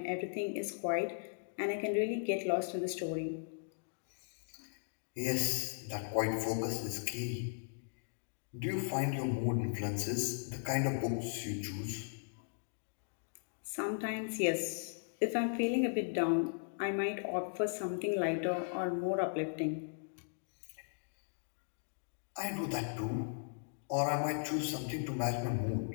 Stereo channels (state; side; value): silent; right; digital silence